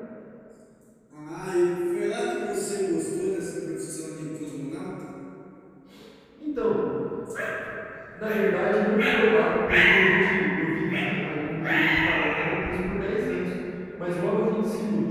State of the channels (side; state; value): both; identical; correlation 1.00